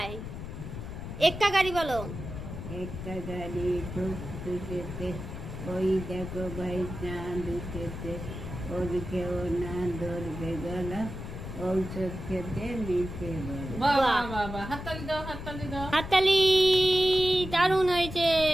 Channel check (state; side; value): noise; left; rumble, 8 dB below the sound